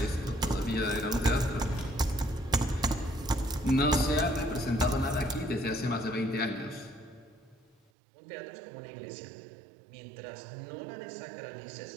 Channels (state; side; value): drops out; left; at 7.8 s